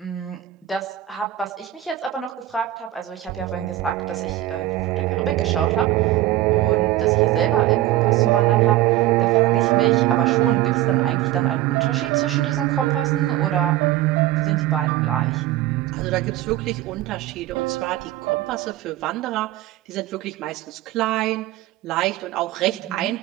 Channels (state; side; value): quieter; left; 14.4 dB